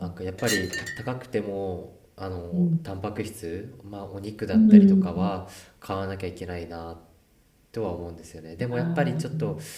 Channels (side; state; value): both; identical; correlation 1.00